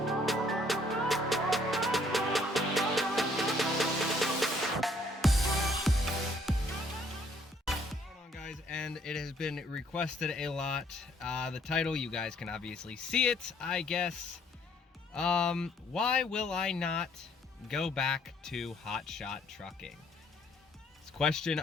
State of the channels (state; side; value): normal; both; correlation 0.64